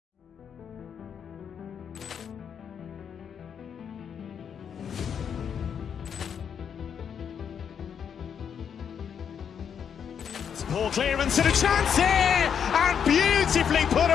Poor clearance and a chance here, and beautifully put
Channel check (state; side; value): quieter; right; 7.7 dB